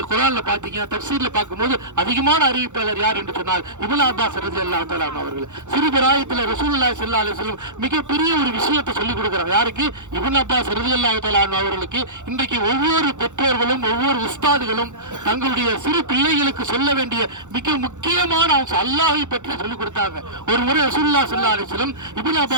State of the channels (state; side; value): late; left; 0.85 ms